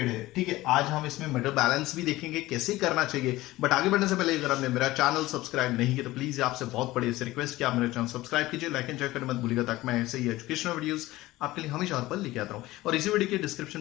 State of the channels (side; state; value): right; quieter; 17.9 dB